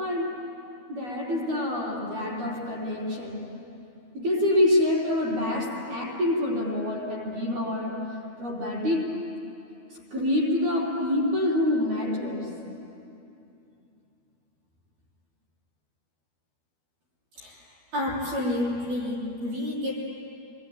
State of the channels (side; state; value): left; late; 12 ms